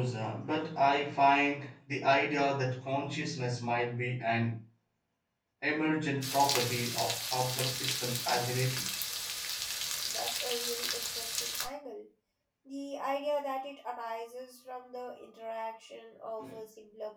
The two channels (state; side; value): identical; both; correlation 1.00